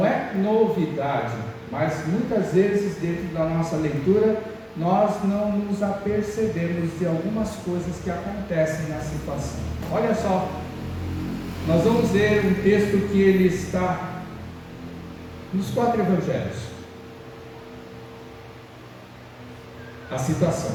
é novidade, mas muitas vezes dentro da nossa leitura nós não nos apercebemos de algumas coisas que acontecem na situação. Olha só, nós vamos ler um texto que ele está nos 4 evangelhos. A citação,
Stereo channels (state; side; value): identical; both; correlation 1.00